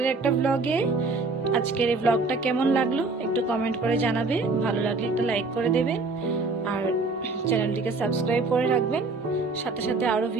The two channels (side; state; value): left; quieter; 3.7 dB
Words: একটা ব্লগে। আজকের এই ব্লগটা কেমন লাগলো একটু কমেন্ট করে জানাবে, ভালো লাগলে একটা লাইক করে দেবেন আর চ্যানেলটিকে সাবস্ক্রাইব করে রাখবেন, সাথে সাথে আরো